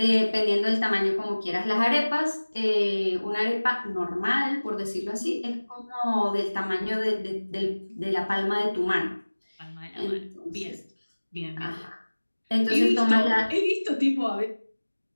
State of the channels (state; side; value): inverted; both; correlation -1.00